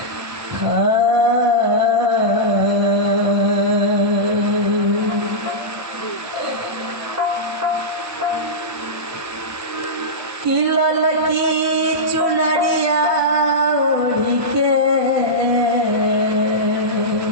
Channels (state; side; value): late; left; 1.2 ms